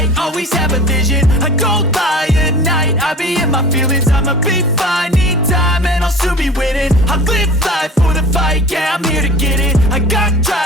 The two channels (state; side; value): normal; both; correlation 0.39